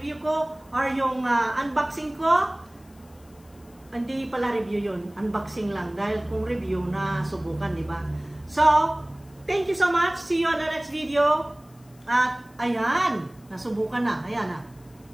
ko or yung unboxing ko. Hindi pala review yun. Unboxing lang. Dahil kung review na subukan, di ba? So, thank you so much. See you on the next video. At, ayan. Nasubukan na. Ayan na.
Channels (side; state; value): left; noise; hiss, 29 dB below the sound